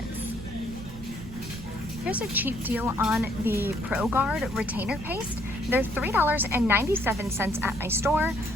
Here's a cheap deal on the ProGuard retainer paste. They're $3.97 at my store.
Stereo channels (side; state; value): right; noise; rumble, 13 dB below the sound